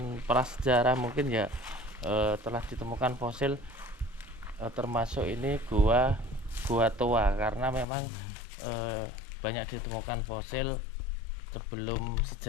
prasejarah mungkin ya, telah ditemukan fosil, termasuk ini gua tua, karena memang banyak ditemukan fosil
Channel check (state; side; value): drops out; right; at 7.9 s